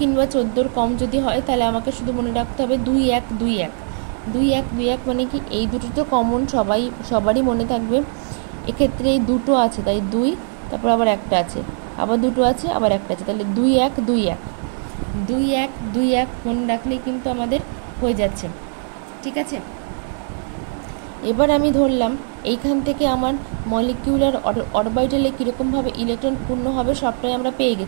কিংবা 14-র কম যদি হয় তাহলে আমাকে শুধু মনে রাখতে হবে 2 1 2 1 2 1 2 1 মানে কি এই দুটো তো কমন, সবারই মনে থাকবে। এক্ষেত্রে এই দুটো আছে তাই 2, তারপর আবার একটা আছে, আবার দুটো আছে, আবার একটা আছে, তাহলে 2 1 2 1 2 1 2 1 মনে রাখলেই কিন্তু আমাদের হয়ে যাচ্ছে। ঠিক আছে, এবার আমি ধরলাম এইখান থেকে আমার মলিকিউলার অরবিটালে কীরকমভাবে ইলেকট্রন পূর্ণ হবে সবটাই আমরা পেয়ে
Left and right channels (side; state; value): left; silent; 65 dB below the other